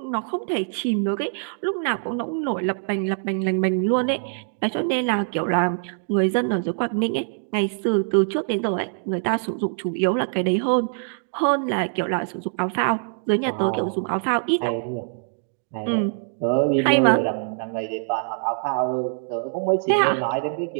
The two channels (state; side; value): silent; left; digital silence